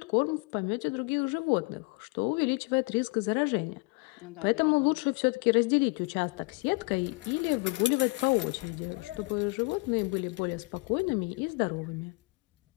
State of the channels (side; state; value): right; quieter; 27.6 dB